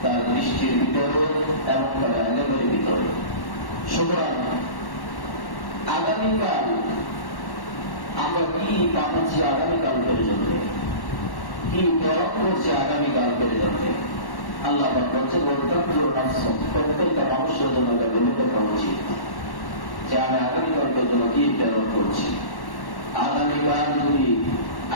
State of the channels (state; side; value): late; right; 1.1 ms